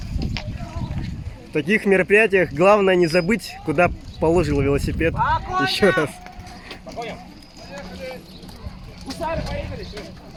В таких мероприятиях главное не забыть, куда положил велосипед. Еще раз. По коням! Гусары, поехали!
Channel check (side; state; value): both; identical; correlation 1.00